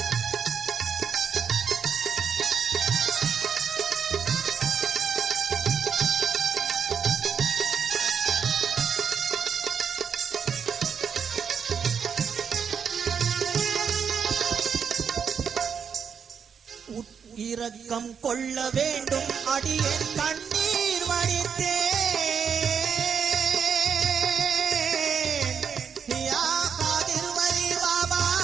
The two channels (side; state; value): left; quieter; 7.0 dB